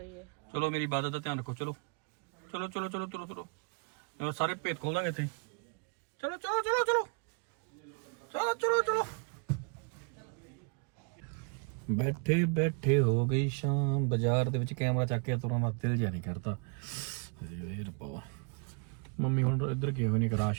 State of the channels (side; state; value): left; quieter; 35.5 dB